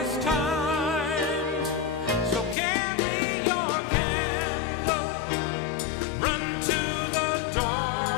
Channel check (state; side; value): drops out; right; at 2.6 s